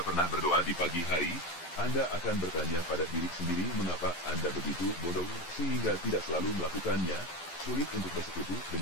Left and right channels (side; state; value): right; late; 12 ms